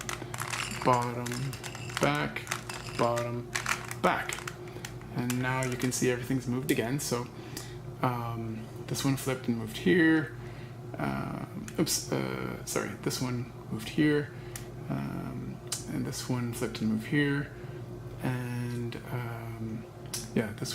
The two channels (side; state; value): both; identical; correlation 1.00